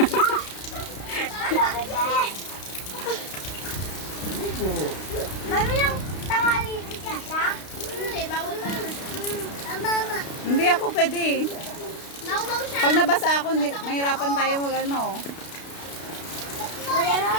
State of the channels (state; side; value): late; right; 32 ms